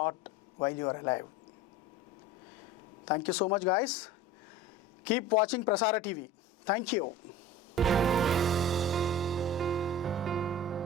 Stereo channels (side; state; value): both; normal; correlation 0.36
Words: while you are alive. Thank you so much, guys. Keep watching Prasara TV. Thank you.